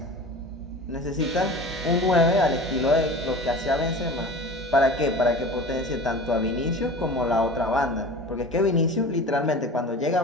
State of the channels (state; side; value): normal; both; correlation 0.36